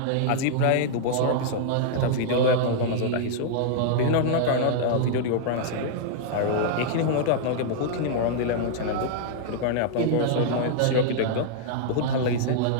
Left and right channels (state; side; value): different; both; correlation -0.01